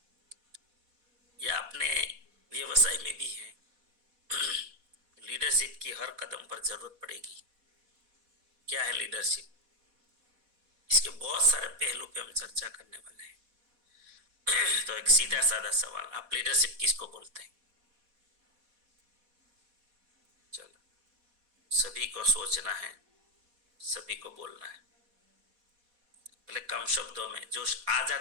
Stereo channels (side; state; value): left; late; 4.1 ms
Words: या अपने व्यवसाय में भी हैं, लीडरशिप की हर कदम पर जरूरत पड़ेगी। क्या है लीडरशिप? इसके बहुत सारे पहलू पे हम चर्चा करने वाले हैं। तो एक सीधा साधा सवाल, आप लीडरशिप किसको बोलते हैं? चलो, सभी को सोचना है, सभी को बोलना है। पहले कम शब्दों में जो आ